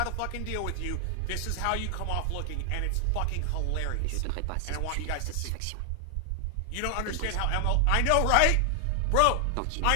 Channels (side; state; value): both; different; correlation 0.00